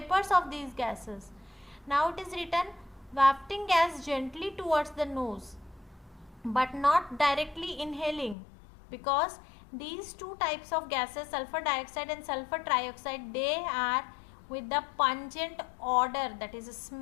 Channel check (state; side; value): drops out; right; at 8.3 s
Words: of these gases. Now it is written wafting gas gently towards the nose but not directly inhaling, because these two types of gases, sulfur dioxide and sulfur trioxide, they are with the pungent odor, that is a